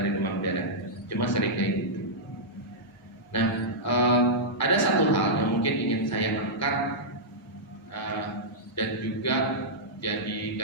demam berdarah, cuma sering kayak gitu. Nah, ada satu hal yang mungkin ingin saya angkat dan juga jadi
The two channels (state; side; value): normal; both; correlation -0.10